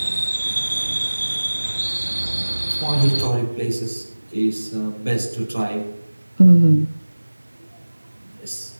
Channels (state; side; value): inverted; both; correlation -1.00